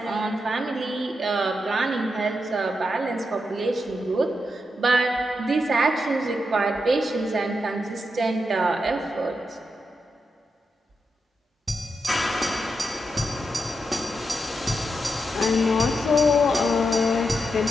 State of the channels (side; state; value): both; normal; correlation 0.85